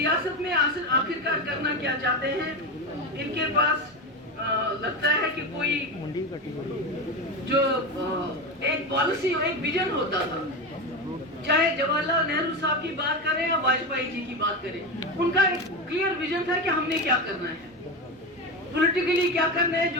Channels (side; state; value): both; normal; correlation 0.19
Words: میں آخرکار کرنا کیا چاہتے ہیں. ان کے پاس لگتا ہے کہ کوئی جو ایک پالیسی اور ایک ویژن ہوتا تھا، چاہے جواہر لال نہرو صاحب کی بات کریں یا واجپئی جی کی بات کریں، ان کا ایک کلیئر ویژن تھا کہ ہم نے کیا کرنا ہے، پولیٹیکلی کیا کرنا ہے